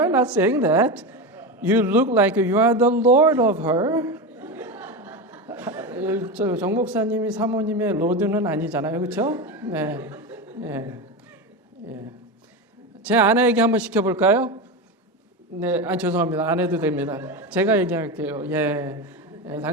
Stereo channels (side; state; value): both; normal; correlation 0.19